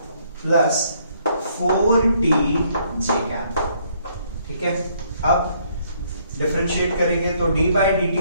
plus 4t j cap. ठीक है, अब डिफरेंशिएट करेंगे तो d by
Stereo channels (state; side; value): inverted; both; correlation -0.67